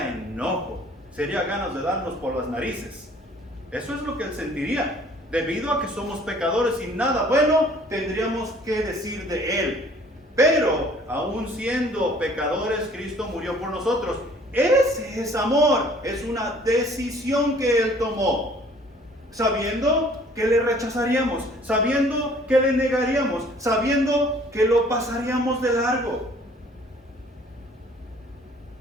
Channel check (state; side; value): normal; both; correlation 0.55